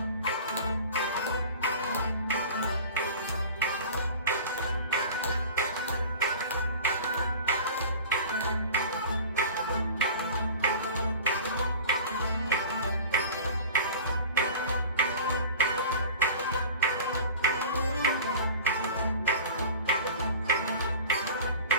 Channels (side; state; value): both; inverted; correlation -0.40